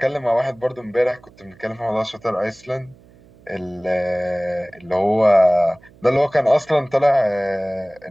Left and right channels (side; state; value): right; noise; hum, 27 dB below the sound